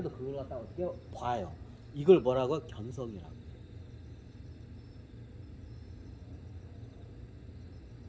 그걸 갖다가 어떻게 봐요. 이걸 뭐라고? 견성이라고.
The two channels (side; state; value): both; identical; correlation 1.00